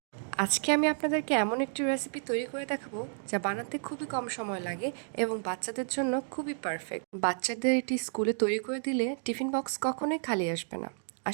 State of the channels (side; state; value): left; silent; digital silence